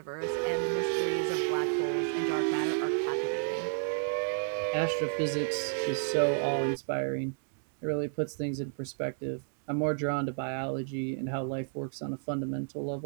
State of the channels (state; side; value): silent; left; digital silence